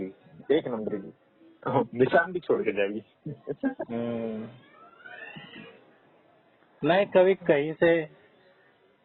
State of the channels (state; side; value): identical; both; correlation 1.00